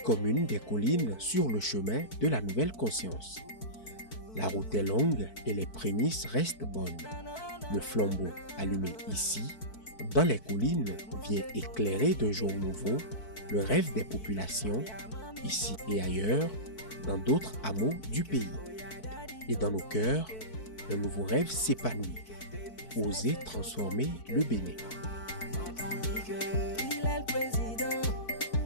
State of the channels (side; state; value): right; late; 4.6 ms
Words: des collines sur le chemin de la nouvelle conscience. La route est longue et les prémices restent bonnes. Le flambeau allumé ici, dans les collines, vient éclairer d'un jour nouveau le rêve des populations, ici et ailleurs, dans d'autres hameaux du pays. Et dans nos cœurs, un nouveau rêve s'épanouit. Oser transformer le Bénin. Il est le président,